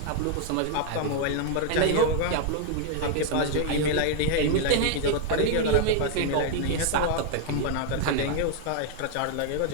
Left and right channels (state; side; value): different; both; correlation 0.00